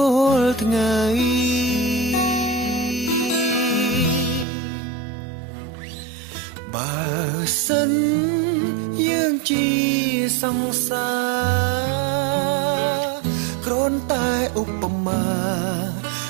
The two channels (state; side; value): drops out; left; at 4.5 s